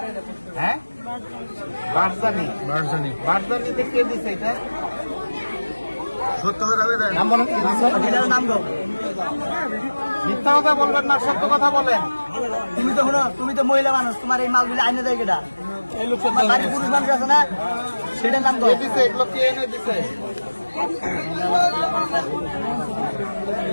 হ্যাঁ, বারজানিতে কে দিছে এটা? সত্য কথা মিথ্যা কথা বলবেন না, সত্য কথা বলেন। তুমি তো মহিলা মানুষ, তোমার এই মালগুলি আইনে দেয় কেটা? বাড়ির পুরুষ মানুষ আছে না, সেটার নাম কে দিছে? এগুলো কে এনে দিছে?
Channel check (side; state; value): both; inverted; correlation -1.00